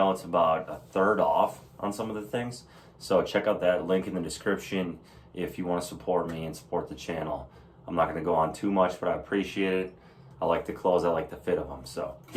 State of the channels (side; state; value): both; identical; correlation 1.00